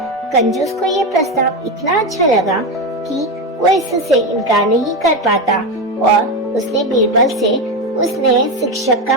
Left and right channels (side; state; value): both; normal; correlation 0.15